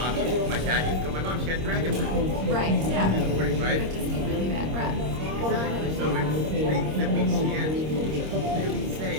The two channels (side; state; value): left; late; 26 ms